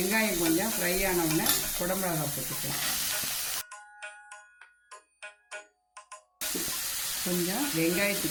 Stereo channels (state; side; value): identical; both; correlation 1.00